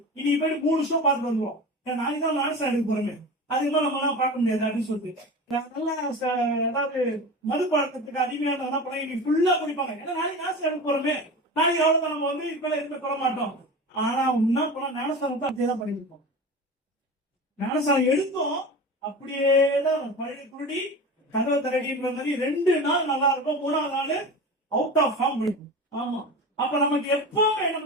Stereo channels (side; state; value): both; normal; correlation 0.31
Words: இன்னைக்கு போய் 3 வருஷம் பார்த்துட்டு வந்துருவோம், நாளைக்கு தான் ஞானஸ்தானத்துக்கு போறோமே, அதுக்கு மேல நம்ம எல்லாம் பார்க்க முடியாது அப்படின்னு சொல்லிட்டு நல்லா ஏதாவது மது பழக்கத்துக்கு அடிமையான என்ன பண்ண இன்னைக்கு ஃபுல்லா குடிப்பாங்க. ஏன்னா நாளைக்கு ஞானஸ்தானத்துக்கு போறோமே, நாளைக்கு எவ்வளவு நம்ம வந்து இப்ப எதுவுமே சொல்ல மாட்டோம். ஆனா என்ன பண்ண, ஞானஸ்தானத்தை அப்படியே தான் பண்ணிருப்போம். ஞானஸ்தானம் எடுத்தோம் அப்படியேதான் பழைய குருடி கதவை தரடின்ற மாதிரி 2 நாள் நல்லா இருக்கும், 3ஆவது நாள் அவுட் ஆஃப் ஃபார்ம் இருக்கும். ஆமா, அப்ப நமக்கு எப்பவுமே